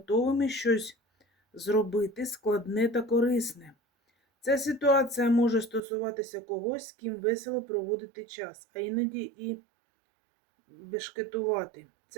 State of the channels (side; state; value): left; drops out; at 5.8 s